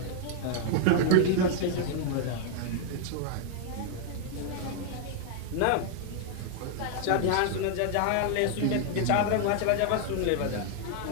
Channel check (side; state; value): both; different; correlation 0.00